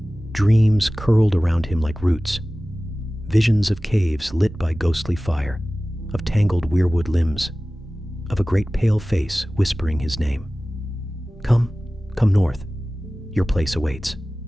dreams curled around him like roots, visions of caves lit by ghostly fire, of tangled weirwood limbs, of a great pale face whispering his name. Come north. Your place awaits.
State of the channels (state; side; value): normal; both; correlation 0.97